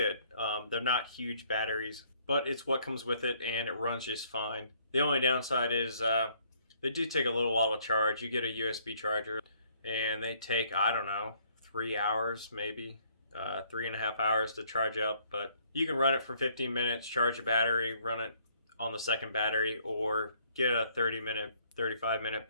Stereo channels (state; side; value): inverted; both; correlation -0.65